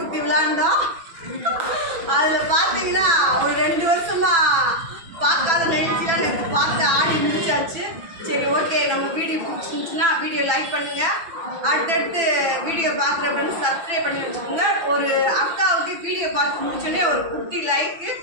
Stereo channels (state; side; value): late; left; 6.0 ms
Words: ஊற்றி விளாண்டோம். அதில் பார்த்தீங்கன்னா ஒரு 2 வருஷமாக பார்க்காத நிகழ்ச்சிலாம் நேற்று பார்த்து ஆடி முடிச்சாச்சு. சரி, ஓகே, நம்ம வீடியோ பிடிச்சிருந்துச்சுன்னா வீடியோ லைக் பண்ணுங்கள். அடுத்தடுத்து வீடியோ பார்க்குற ஃப்ரெண்ட்ஸ் சப்ஸ்கிரைப் பண்ணி வச்சுக்கோங்க. ஒரு அக்காவுக்கு வீடியோ பார்த்து முடிச்சோடனே ஒரு குட்டி லைக்கு,